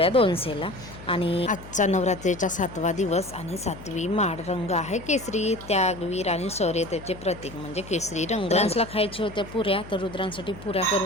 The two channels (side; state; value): left; noise; hum, 16 dB below the sound